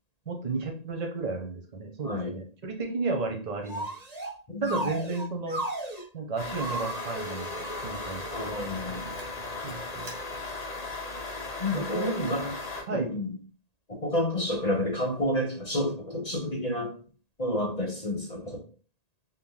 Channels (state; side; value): late; right; 1.8 ms